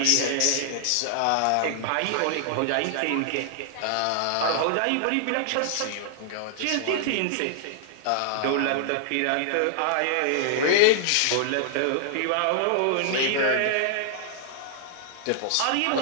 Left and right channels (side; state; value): both; different; correlation -0.01